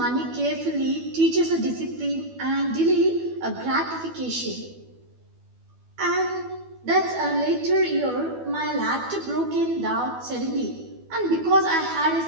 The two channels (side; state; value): left; late; 12 ms